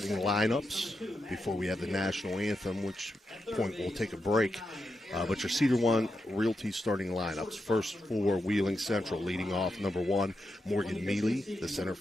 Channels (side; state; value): both; normal; correlation 0.86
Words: lineups before we have the national anthem, which point we'll take a break. But your Cedar One Realty starting lineups. First for Wheeling Central, leading off number 1, Morgan Mealy, the center